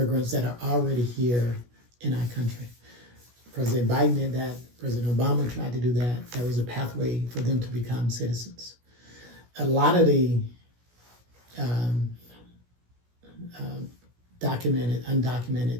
that are already here in our country. President Biden did that. President Obama tried to do that. There was a pathway for them to become citizens. A lot of the documented,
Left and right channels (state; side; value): late; left; 17 ms